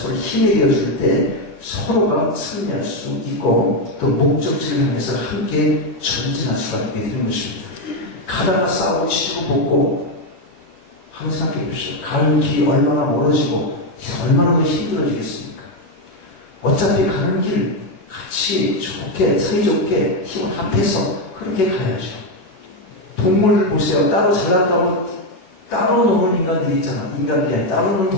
힘이 되어줄 때 서로가 승리할 수 있고 또 목적지를 향해서 함께 전진할 수가 있게 되는 것입니다. 가다가 싸우고 치고 볶고 한번 생각해 보십시오. 가는 길이 얼마나 멀어지고 얼마나 더 힘들어지겠습니까? 어차피 가는 길 같이 좋게 사이좋게 힘을 합해서 그렇게 가야죠. 동물들 보세요. 따로 잘난다고 따로 노는 인간들이 있잖아. 인간들이 아니라 따로 노는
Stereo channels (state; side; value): late; right; 11 ms